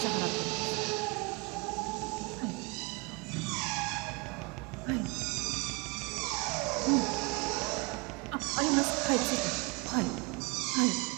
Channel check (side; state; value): left; quieter; 28.9 dB